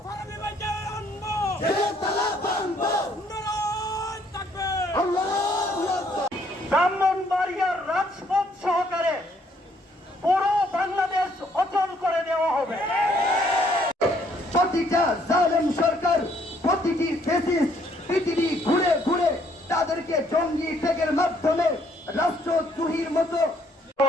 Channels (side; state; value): both; normal; correlation 0.67